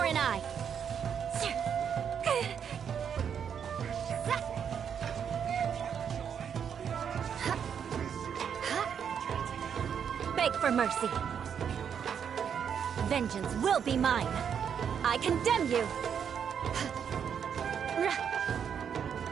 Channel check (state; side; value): quieter; left; 7.8 dB